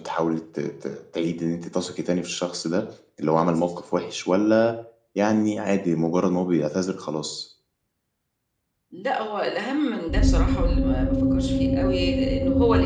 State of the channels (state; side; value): identical; both; correlation 1.00